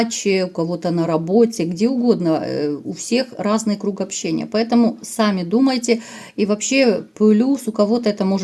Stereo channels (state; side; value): identical; both; correlation 1.00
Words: у кого-то на работе, где угодно. У всех разный круг общения. Поэтому сами думайте. И вообще плюс у кого-то это